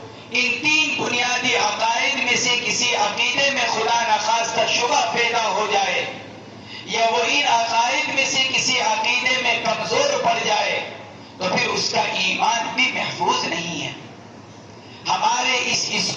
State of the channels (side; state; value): both; identical; correlation 1.00